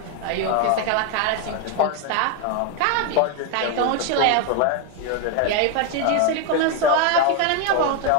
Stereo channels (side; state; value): both; different; correlation 0.01